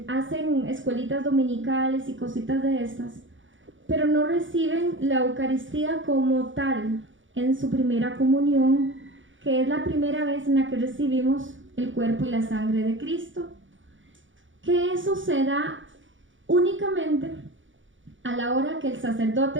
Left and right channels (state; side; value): late; left; 0.56 ms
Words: escuelitas dominicales y cositas de estas, pero no reciben la Eucaristía como tal en su primera comunión, que es la primera vez en la que recibimos el cuerpo y la sangre de Cristo. Que eso se da únicamente a la hora que el